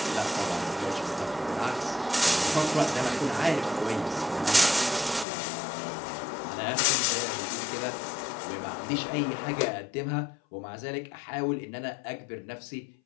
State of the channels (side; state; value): right; drops out; at 5.2 s